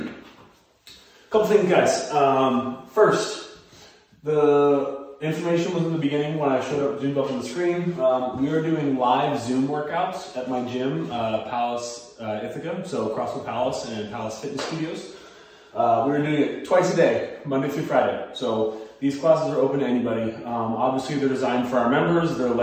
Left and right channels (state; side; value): identical; both; correlation 1.00